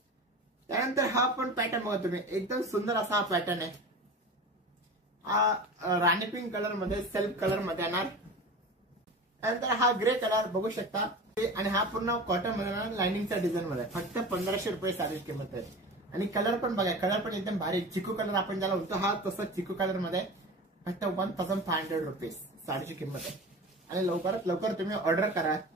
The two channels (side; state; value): both; normal; correlation 0.32